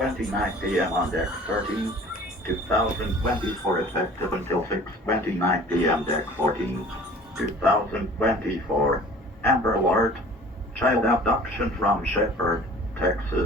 p.m. on Deck 13, 2024 effective until 6:29 p.m. Deck 14, 2024. Amber Alert. Child abduction from Shepherd,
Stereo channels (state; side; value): normal; both; correlation 0.47